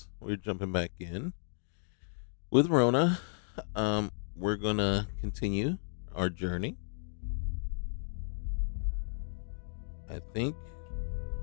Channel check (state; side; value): silent; right; digital silence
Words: we're jumping back in with Rhona. We're gonna continue our journey. I think